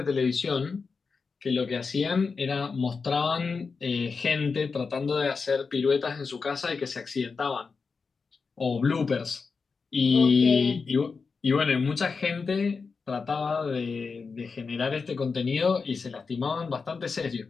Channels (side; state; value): right; quieter; 4.9 dB